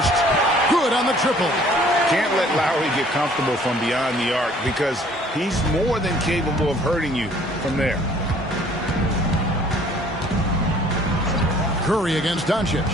Good on the triple. Can't let Lowry get comfortable from beyond the arc because he's more than capable of hurting you from there. Curry against Doncic.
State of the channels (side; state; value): both; normal; correlation 0.56